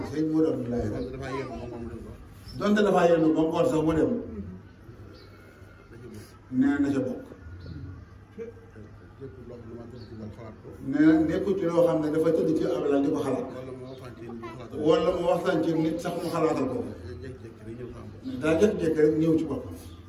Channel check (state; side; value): identical; both; correlation 1.00